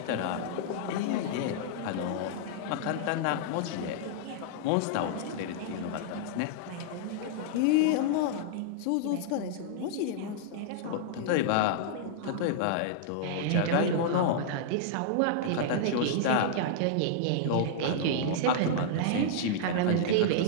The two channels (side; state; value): both; different; correlation -0.02